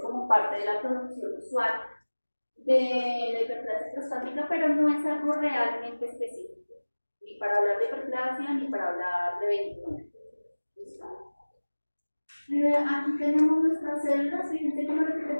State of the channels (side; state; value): both; inverted; correlation -1.00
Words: parte de la producción usual de la hiperplasia prostática, pero no es algo realmente específico, ni para hablar de hiperplasia ni para hablar de benigno. ¿Listo? Aquí tenemos nuestras células, fíjense que lo que